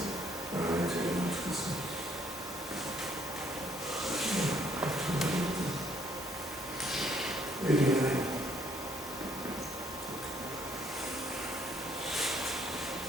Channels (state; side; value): normal; both; correlation 0.66